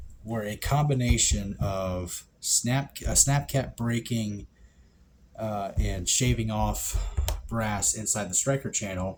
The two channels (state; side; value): identical; both; correlation 1.00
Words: were a combination of snap cap breaking and shaving off brass inside the striker